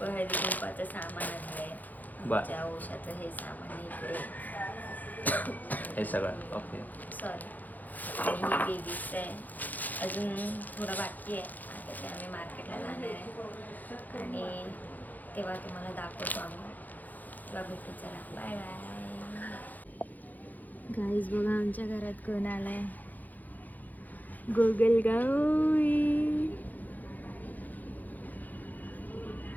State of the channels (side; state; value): right; late; 0.082 ms